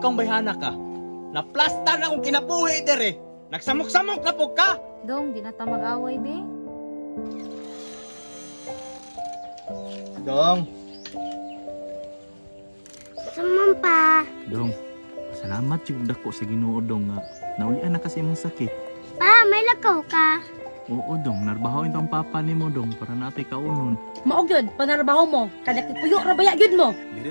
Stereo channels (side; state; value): both; inverted; correlation -1.00